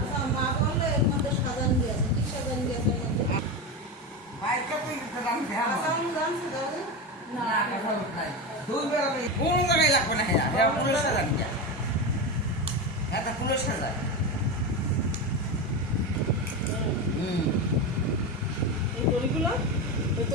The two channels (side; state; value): both; normal; correlation 0.18